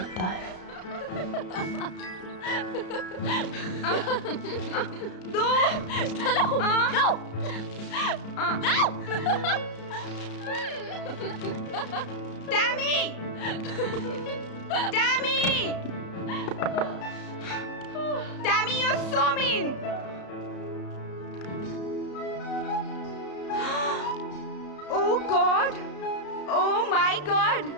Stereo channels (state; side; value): late; right; 33 ms